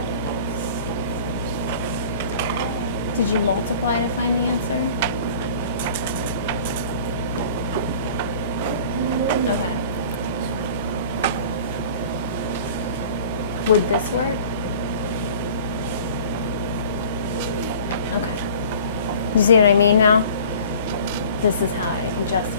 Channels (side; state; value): both; inverted; correlation -0.46